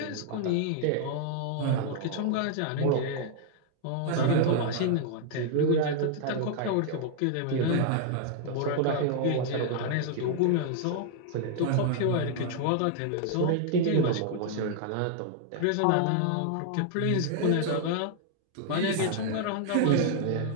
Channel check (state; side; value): different; both; correlation -0.01